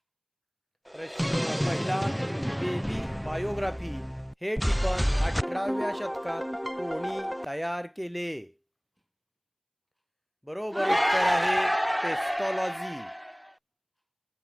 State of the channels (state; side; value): identical; both; correlation 1.00